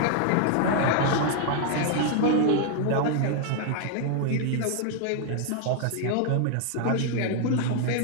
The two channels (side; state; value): both; different; correlation 0.00